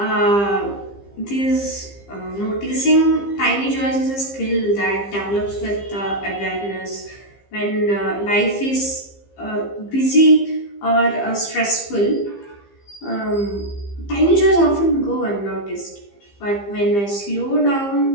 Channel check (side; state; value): right; late; 15 ms